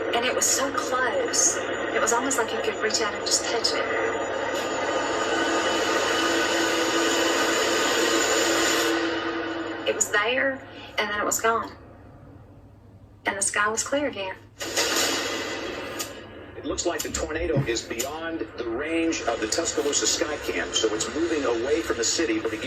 and it was so close. It was almost like you could reach out and just touch it. It was there, and then it was gone. And the sky was clear again. It looks like the tornado is beyond the range of the Tuscaloosa sky cam, so it's moving away from the city. But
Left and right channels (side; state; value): both; identical; correlation 1.00